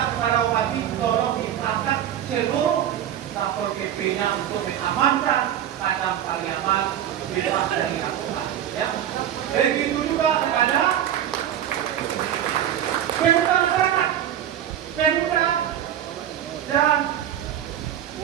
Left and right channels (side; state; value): left; quieter; 10.6 dB